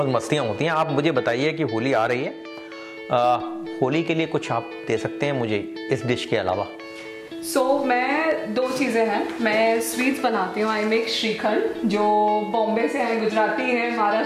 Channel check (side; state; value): both; identical; correlation 1.00